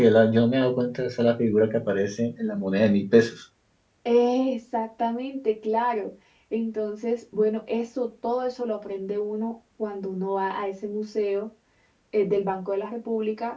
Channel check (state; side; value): identical; both; correlation 1.00